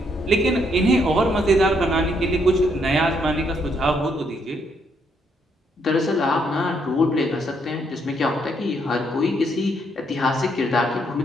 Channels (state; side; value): normal; both; correlation 0.73